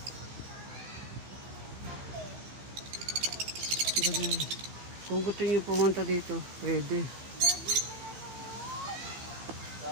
Kung gusto nyo pumunta dito, pwede.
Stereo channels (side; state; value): left; late; 16 ms